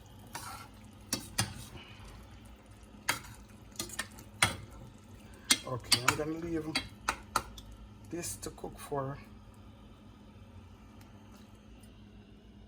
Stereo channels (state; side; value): identical; both; correlation 1.00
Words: Okay, I'm gonna leave this to cook for